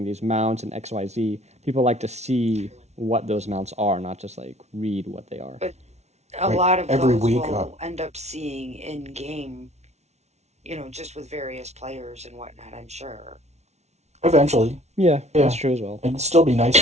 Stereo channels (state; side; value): late; left; 0.32 ms